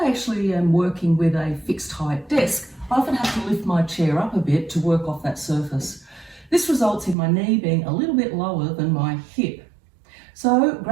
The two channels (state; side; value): drops out; left; at 7.2 s